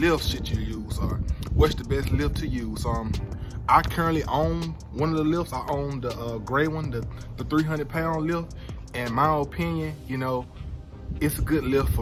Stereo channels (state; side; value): identical; both; correlation 1.00